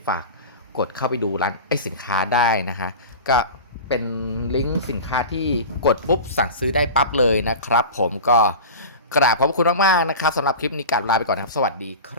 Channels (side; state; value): both; inverted; correlation -0.31